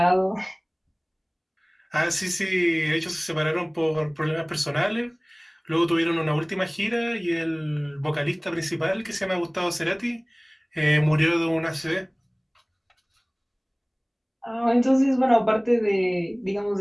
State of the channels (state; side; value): identical; both; correlation 1.00